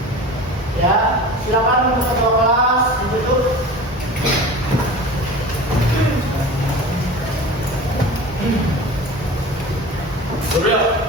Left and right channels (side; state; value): both; normal; correlation 0.36